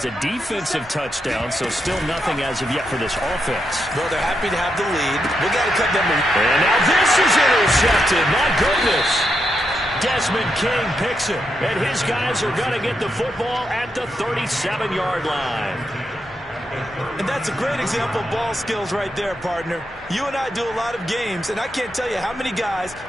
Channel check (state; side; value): normal; both; correlation 0.83